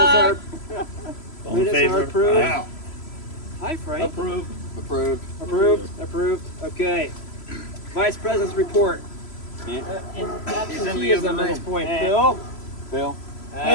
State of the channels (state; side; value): late; right; 3.0 ms